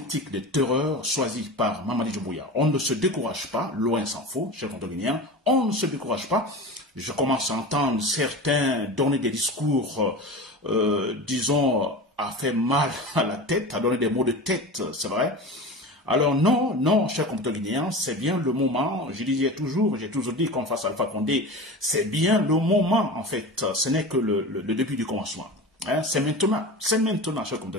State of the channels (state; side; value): normal; both; correlation 0.31